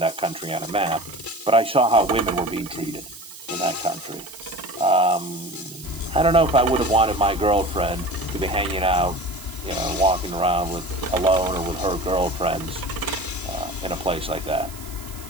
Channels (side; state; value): right; noise; hiss, 16 dB below the sound